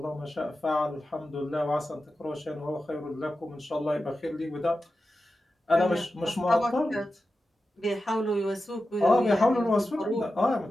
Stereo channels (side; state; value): both; normal; correlation 0.92